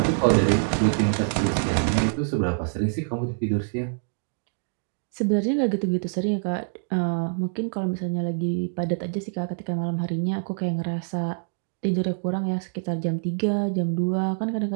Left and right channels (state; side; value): silent; left; digital silence